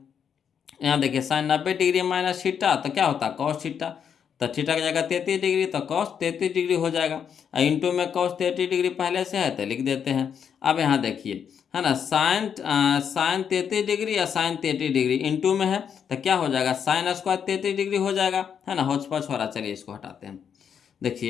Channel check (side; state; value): right; quieter; 7.7 dB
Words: यहाँ देखिए साइन 90 डिग्री माइनस थीटा तो क्या होता है कॉस थीटा, तो थीटा की जगह 33 डिग्री तो कॉस 33 डिग्री हो जाएगा, इंटू में कॉस 33 डिग्री पहले से है तो लिख देते हैं। अब यहाँ देखिए, है ना, साइन 33 डिग्री या साइन 33 डिग्री इंटू में है तो क्या हो जाएगा साइन स्क्वायर 33 डिग्री हो जाएगा, है ना, होच पच हो रहा, चलिए इसको हटाते हैं।